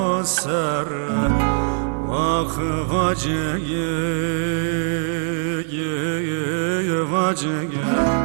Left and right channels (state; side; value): silent; left; digital silence